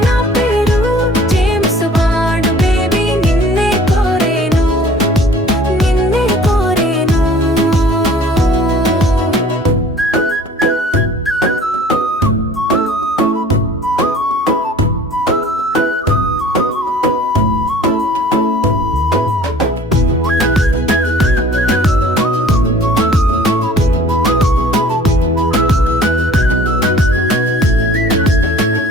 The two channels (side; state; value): both; normal; correlation 0.49